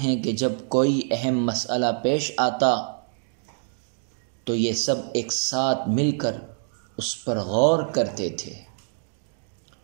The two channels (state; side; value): silent; left; digital silence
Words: ہے کہ جب کوئی اہم مسئلہ پیش آتا تو یہ سب ایک ساتھ مل کر اس پر غور کرتے تھے،